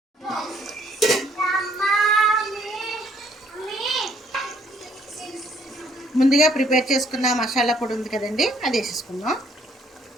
ముందుగా ప్రిపేర్ చేసుకున్న మసాలా పొడి ఉంది కదండి, అది వేసేసుకుందాం.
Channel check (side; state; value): both; normal; correlation 0.66